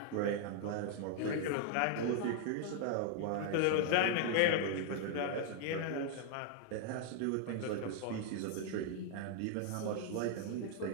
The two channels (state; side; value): different; both; correlation 0.00